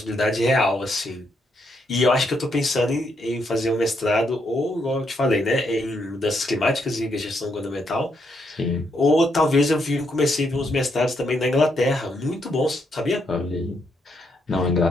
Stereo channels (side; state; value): both; normal; correlation 0.77